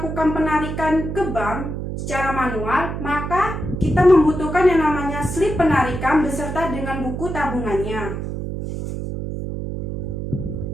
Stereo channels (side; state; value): right; noise; hum, 5 dB below the sound